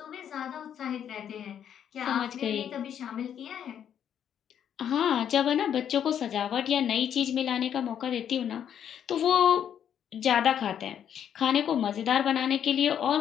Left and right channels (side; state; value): right; quieter; 9.2 dB